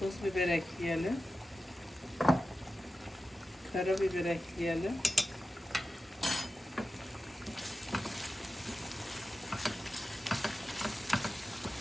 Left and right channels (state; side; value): normal; both; correlation 0.93